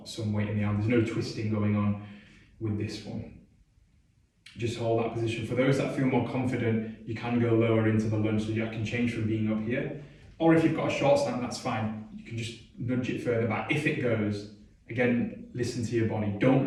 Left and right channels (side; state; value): both; identical; correlation 1.00